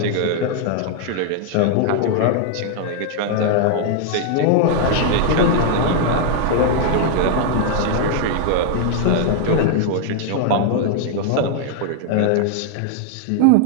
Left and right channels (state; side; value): different; both; correlation 0.00